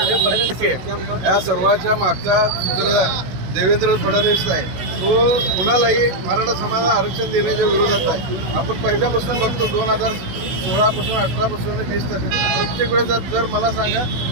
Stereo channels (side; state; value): left; late; 16 ms